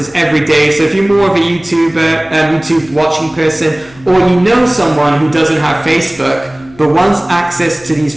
every day. So if you're more of a YouTube watching person, or you know someone who doesn't have Facebook but wants access to these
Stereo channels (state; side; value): noise; left; hum, 25 dB below the sound